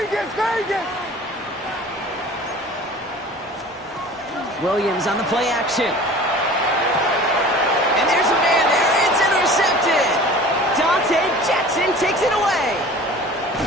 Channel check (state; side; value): normal; both; correlation 0.42